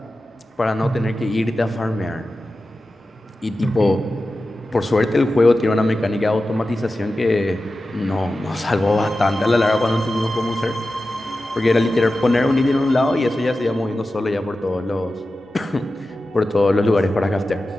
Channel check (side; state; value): both; normal; correlation 0.93